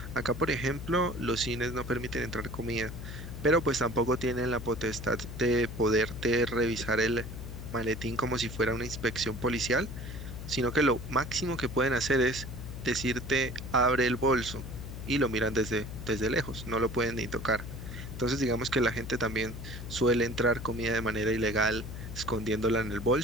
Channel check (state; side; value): noise; left; hum, 9 dB below the sound